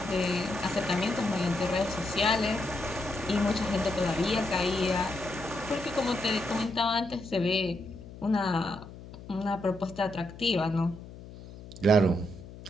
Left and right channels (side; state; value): left; noise; hum, 15 dB below the sound